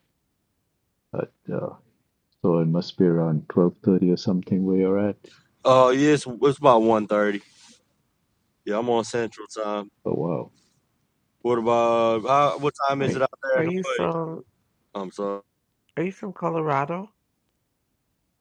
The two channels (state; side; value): identical; both; correlation 1.00